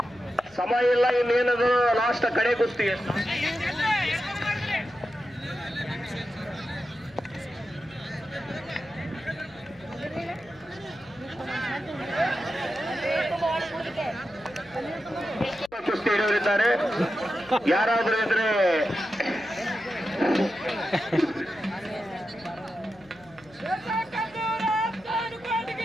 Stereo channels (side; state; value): left; noise; hum, 26 dB below the sound